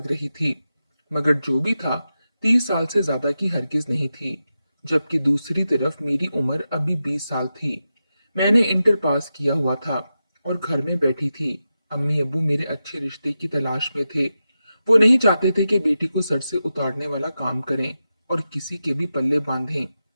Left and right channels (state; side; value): inverted; both; correlation -0.90